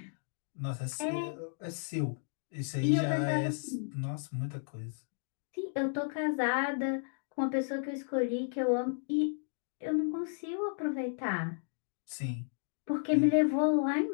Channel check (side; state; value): right; silent; digital silence